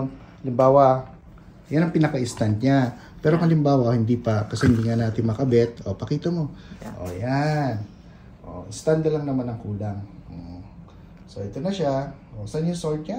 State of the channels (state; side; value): identical; both; correlation 1.00